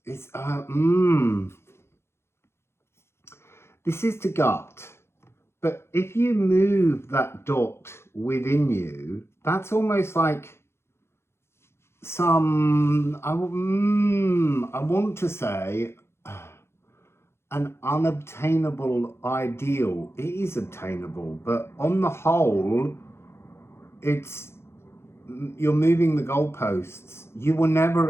It's, this is the gut. But if you move that dot within you, that's almost like some, I want to say, an unobtainable ideal. It is obtainable, but on the whole, you're moving the goalposts. You will never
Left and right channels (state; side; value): late; right; 0.12 ms